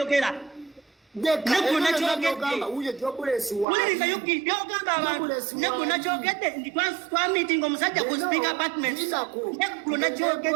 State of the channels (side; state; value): left; drops out; at 3.7 s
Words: negona kyogedde wuliriza yuki byogamba abantu negona kyogedde ndi twamitinga omusajja ku speaker apartment negona